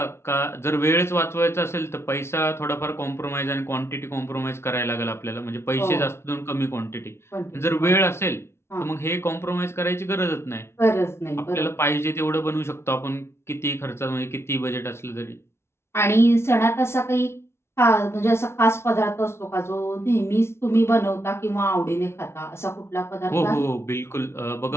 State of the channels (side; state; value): right; late; 0.12 ms